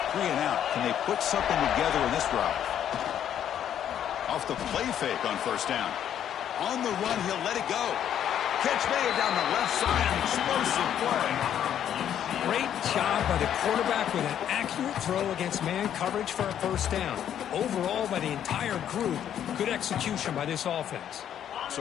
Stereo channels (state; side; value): quieter; right; 9.9 dB